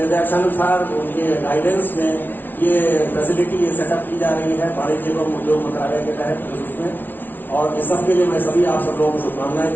उनके गाइडेंस में ये फैसिलिटी, ये सेटअप की जा रही है वाणिज्य एवं उद्योग मंत्रालय के तहत उसमें। और इस सब के लिए मैं सभी आप सब लोगों को शुभकामनाएं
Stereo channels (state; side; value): late; right; 0.090 ms